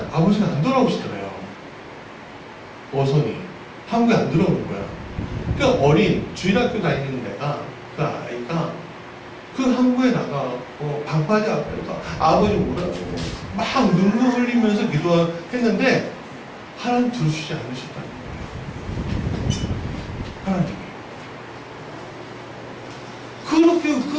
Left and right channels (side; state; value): both; identical; correlation 1.00